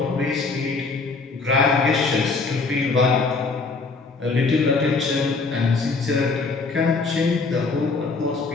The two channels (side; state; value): right; quieter; 4.1 dB